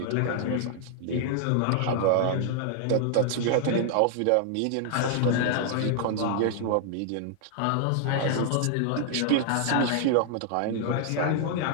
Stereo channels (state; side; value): different; both; correlation 0.00